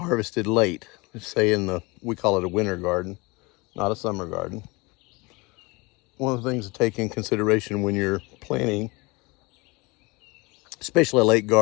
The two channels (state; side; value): quieter; right; 25.8 dB